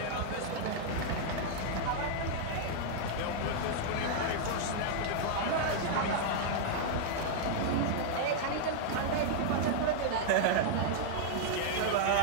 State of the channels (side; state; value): both; different; correlation -0.01